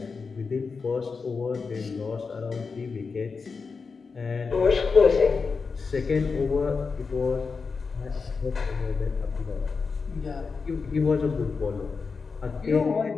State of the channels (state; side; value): quieter; right; 4.9 dB